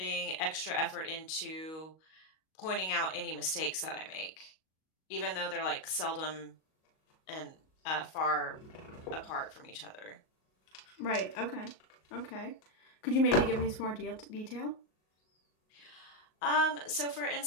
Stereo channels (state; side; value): late; right; 38 ms